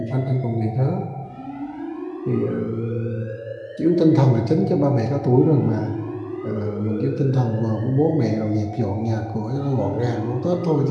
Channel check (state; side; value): identical; both; correlation 1.00